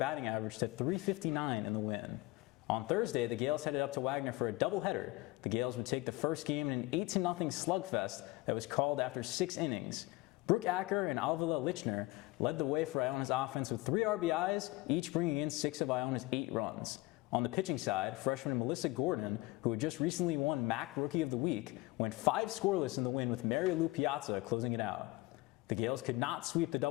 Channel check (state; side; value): quieter; right; 21.0 dB